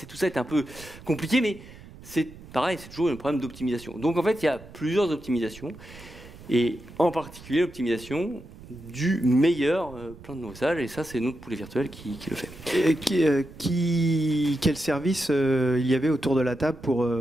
ça est un peu compliqué, mais c'est pareil, c'est toujours un problème d'optimisation. Donc en fait, il y a plusieurs optimisations, et en particulier l'optimisation du meilleur plein de nos usages, et ça c'est notre poulet virtuel qui le fait. Et quel service il y avait autour de la table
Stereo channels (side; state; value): right; noise; rumble, 18 dB below the sound